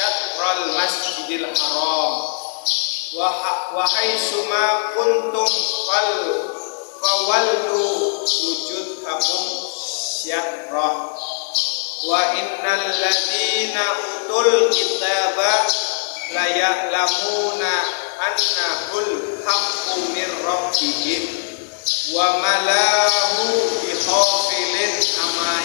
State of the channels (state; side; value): silent; right; 66 dB below the other